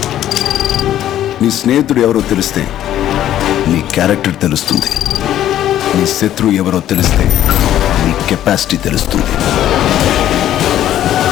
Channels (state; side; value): quieter; right; 12.0 dB